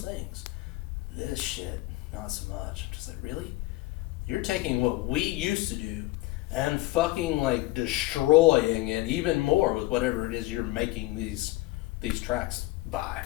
things. This shit, not so much. I'm just like, really? You're taking what we used to do and fucking, like, destroying it even more with whatever it is you're making these tracks by.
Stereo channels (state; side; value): quieter; right; 19.4 dB